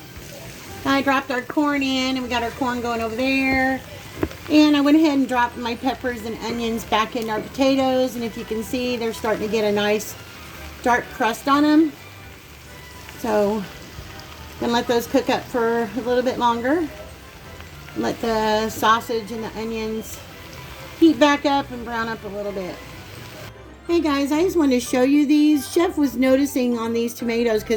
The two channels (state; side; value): identical; both; correlation 1.00